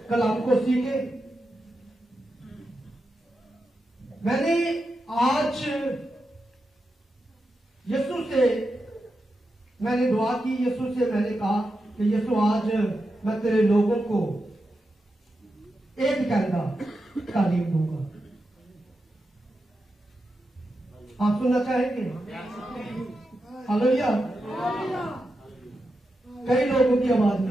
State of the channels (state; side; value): normal; both; correlation 0.88